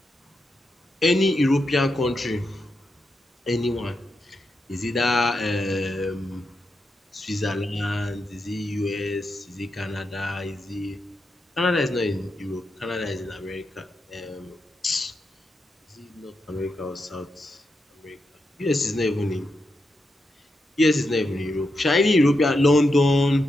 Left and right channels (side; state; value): both; normal; correlation 0.86